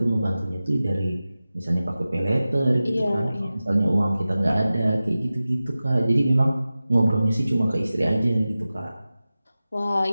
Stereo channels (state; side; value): inverted; both; correlation -0.95